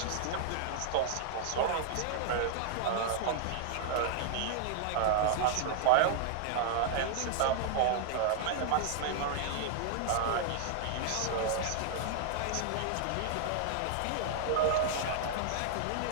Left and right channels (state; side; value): different; both; correlation -0.01